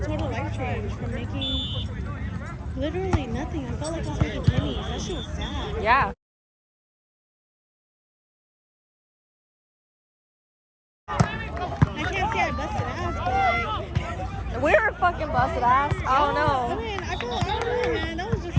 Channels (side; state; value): both; identical; correlation 1.00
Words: life change from making literally nothing. I felt like I was making pennies. That shit was sad. Yeah. I can't say I busted ass, but like, We're fucking busted ass. Oh I no. mean, I don't know, man. That was just